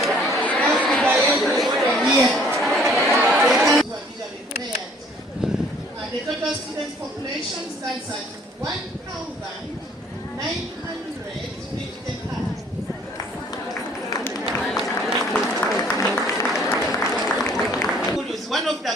Here. The total student population stands at 1,955. One of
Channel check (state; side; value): normal; both; correlation 0.58